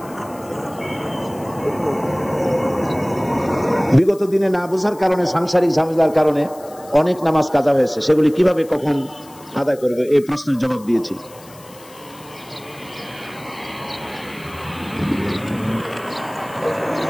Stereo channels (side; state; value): left; noise; hiss, 22 dB below the sound